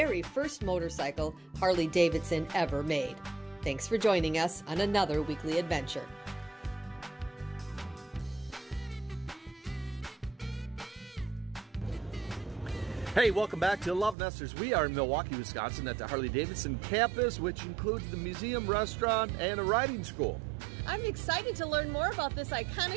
first motorcycle Harley Davidson ever made. Thanks for joining us on another weekly adventure. Hey, welcome back to LoveNesters. We are in Milwaukee, Wisconsin at the Harley Davidson Campus, which includes the museum, restaurant, and a riding school. I'm excited to learn more about this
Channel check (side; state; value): left; drops out; at 14.2 s